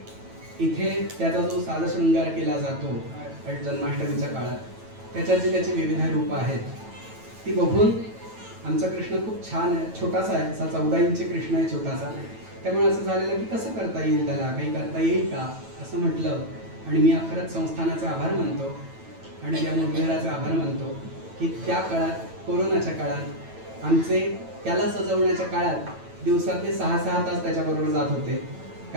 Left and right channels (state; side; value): late; left; 9.1 ms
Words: इथे त्याचा जो साजशृंगार केला जातो जन्माष्टमीच्या काळात, त्याच्यात जी त्याची विविध रूपं आहेत ती बघून आमचा कृष्ण खूप छान आहे. छोटासा आहे, असा 14 इंची कृष्ण आहे, छोटासा. त्यामुळे असं झालेलं की कसं करता येईल, त्याला काही करता येईल का असं म्हटलं. आणि मी खरंच संस्थानाचे आभार मानतो आणि या मुरलीधराचे आभार मानतो की त्या काळात, कोरोनाच्या काळात, आमचे त्याला सजवण्याच्या काळात दिवसातले 6-6 तास त्याच्याबरोबर जात होते.